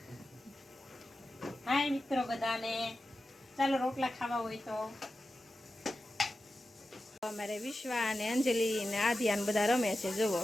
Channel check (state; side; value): normal; both; correlation 0.93